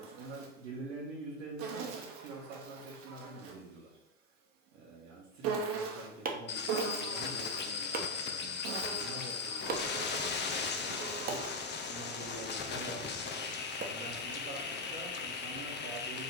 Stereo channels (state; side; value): normal; both; correlation 0.02